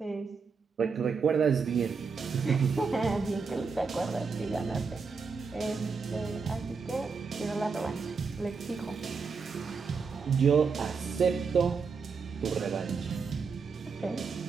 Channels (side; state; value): left; quieter; 5.2 dB